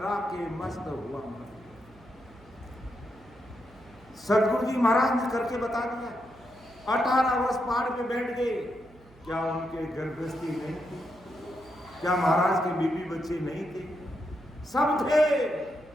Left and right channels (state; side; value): noise; right; hum, 25 dB below the sound